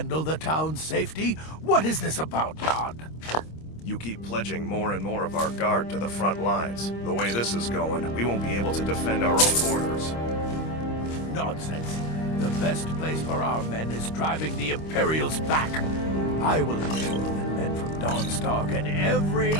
the town's safety? What is this about, Don? You keep pledging more and more of our guard to the front lines. The way this is going, we won't be able to defend our own borders. Nonsense. The best place for our men is driving the Imperials back. I will ensure that men from Dawnstar get every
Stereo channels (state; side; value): late; right; 26 ms